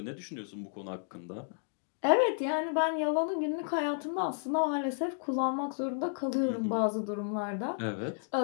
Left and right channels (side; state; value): right; silent; digital silence